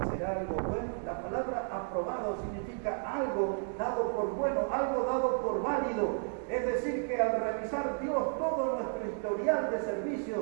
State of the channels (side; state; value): left; silent; 56 dB below the other